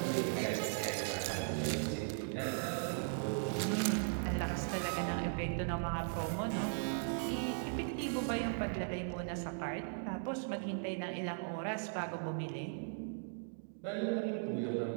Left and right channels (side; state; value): left; silent; digital silence